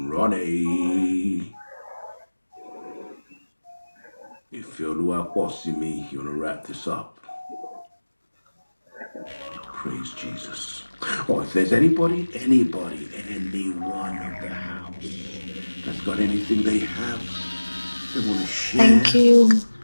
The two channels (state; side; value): inverted; both; correlation -1.00